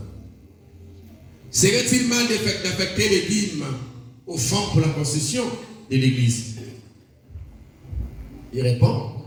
Serait-il mal d'affecter les dîmes au fond pour la concession de l'Église? Il répond.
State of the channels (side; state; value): both; identical; correlation 1.00